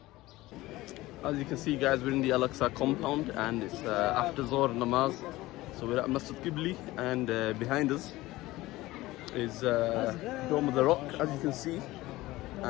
you can see, guys, we're in the Al-Aqsa compound and it's after Zohr namaz. So we're at Masjid Qibli and behind us is Dome of the Rock, as you can see.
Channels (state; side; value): quieter; right; 18.3 dB